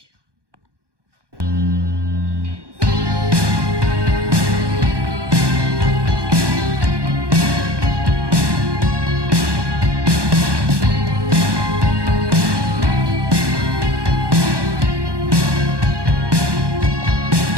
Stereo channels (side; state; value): left; late; 1.2 ms